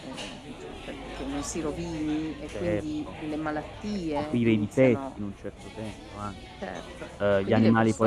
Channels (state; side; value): identical; both; correlation 1.00